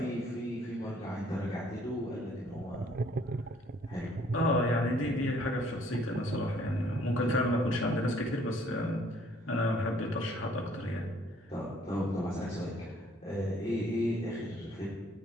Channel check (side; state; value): both; normal; correlation 0.61